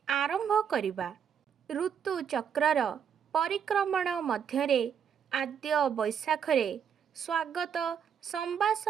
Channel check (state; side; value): quieter; left; 7.8 dB